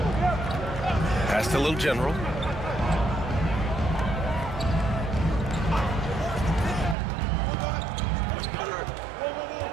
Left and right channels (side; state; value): left; drops out; at 7.0 s